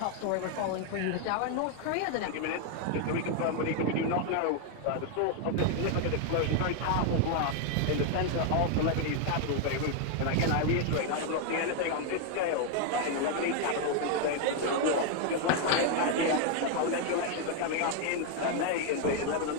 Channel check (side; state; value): both; different; correlation 0.01